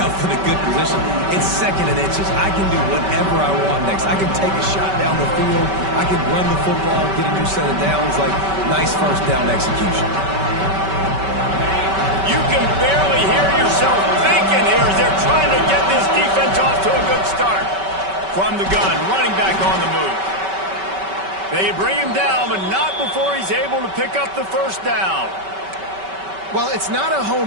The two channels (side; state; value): left; late; 5.2 ms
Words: in a good position. It's second and inches. I can do whatever I want next. I can take a shot down the field. I can run the football, get a new set of downs. Like, nice first down execution. You can barely hear yourself thinking here as they're trying to get this defense off to a good start. From the gun, running back on the move. They bring him down, but not before he's able to pick up the first down. Well, it's not a